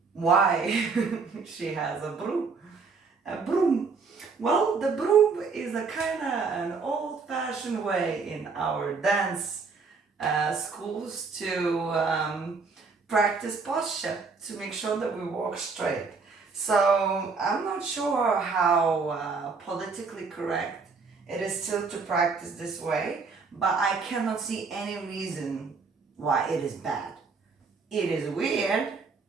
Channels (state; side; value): quieter; left; 4.8 dB